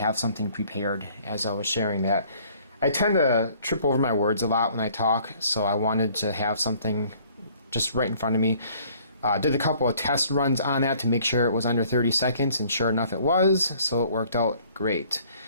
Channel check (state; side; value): inverted; both; correlation -0.58